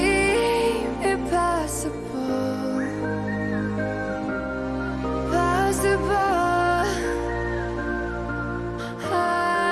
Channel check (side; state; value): right; noise; rumble, 27 dB below the sound